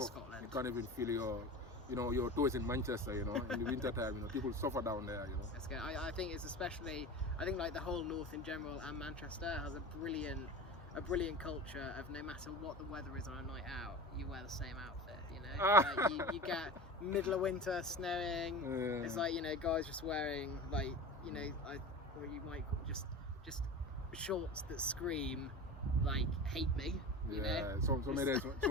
Scotland. You can't even feel your toes in Manchester, in the winter time, people suffer down there, That's good. I think it's especially, like the whole north in general and Manchester has a brilliant culture of no matter what the weather is on a night out, you wear the same outfit, you get middle of winter, snowing, it's like, guys just wearing or you might just shorts that scream like hate me. Some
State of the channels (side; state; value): both; normal; correlation 0.31